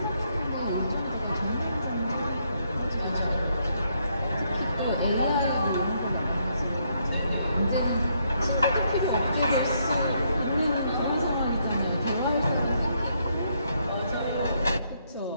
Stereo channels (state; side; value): inverted; both; correlation -0.74